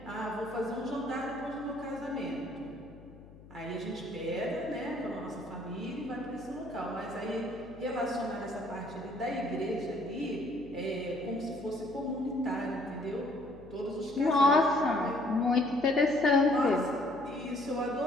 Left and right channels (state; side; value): noise; left; hum, 20 dB below the sound